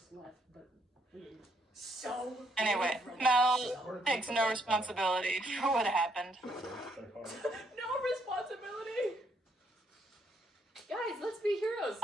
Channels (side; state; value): both; normal; correlation 0.72